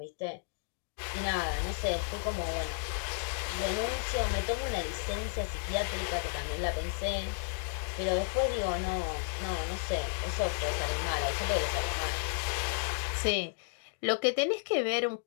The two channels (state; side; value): silent; right; digital silence